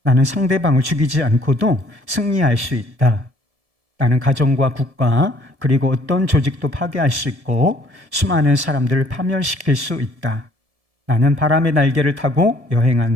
나는 상대방을 죽이지 않고도 승리할 수 있다. 나는 가정과 국가 그리고 어떤 조직도 파괴할 수 있고 수많은 사람들을 파멸시킬 수 있다. 나는 바람의 날개를 타고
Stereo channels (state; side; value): late; left; 1.7 ms